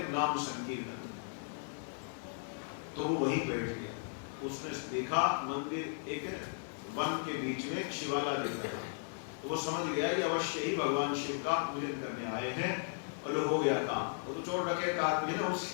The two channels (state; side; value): silent; right; 54 dB below the other